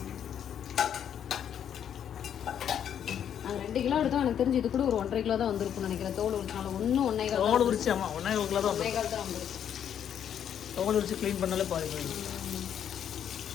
நாங்கள் 2 கிலோ எடுத்தோம். எனக்கு தெரிஞ்சு இது கூட ஒரு 1.5 கிலோ தான் வந்திருக்கும்னு நினைக்கிறேன். தோல் உரிச்சாலும் ஒன்றும் 1.5 கிலோ தோல் உரிச்சு. ஆமாம், 1.5 கிலோ தான் வந்திருக்கு. தோல் உரிச்சு க்ளீன் பண்ணாலே பாருங்க.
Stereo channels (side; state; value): right; quieter; 9.1 dB